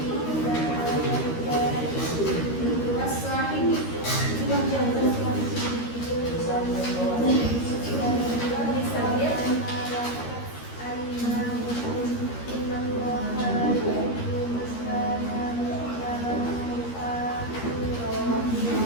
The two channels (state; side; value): late; right; 13 ms